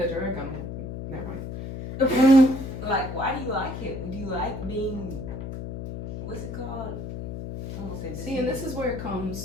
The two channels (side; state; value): left; noise; hum, 7 dB below the sound